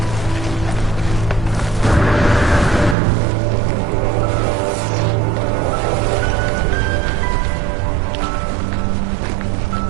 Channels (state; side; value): drops out; left; at 3.0 s